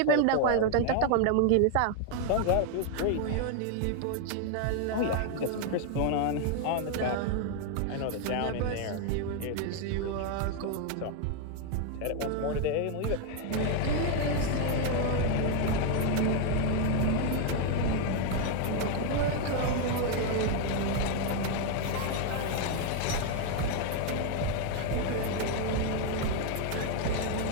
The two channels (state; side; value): different; both; correlation 0.01